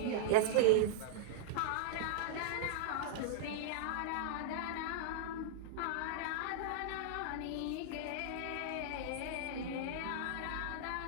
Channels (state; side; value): different; both; correlation -0.02